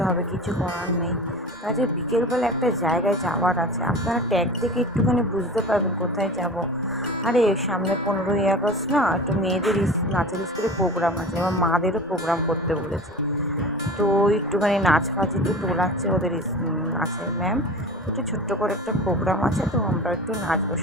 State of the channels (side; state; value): both; normal; correlation 0.35